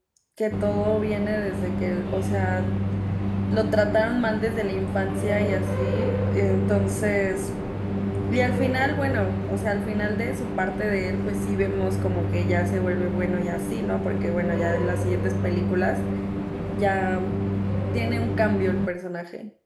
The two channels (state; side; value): identical; both; correlation 1.00